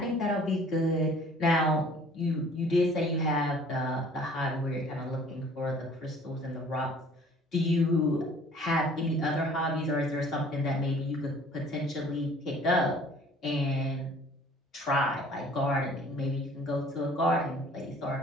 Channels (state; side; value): normal; both; correlation 0.52